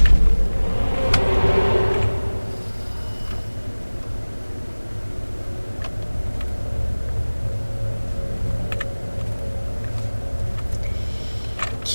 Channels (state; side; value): inverted; both; correlation -1.00